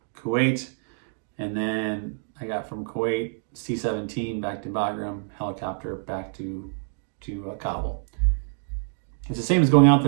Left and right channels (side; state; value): left; silent; digital silence